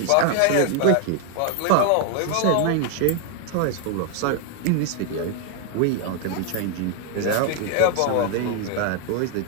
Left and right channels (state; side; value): different; both; correlation 0.01